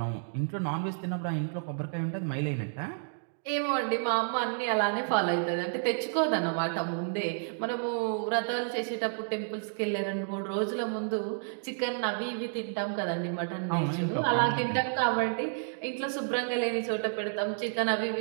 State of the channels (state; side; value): silent; left; digital silence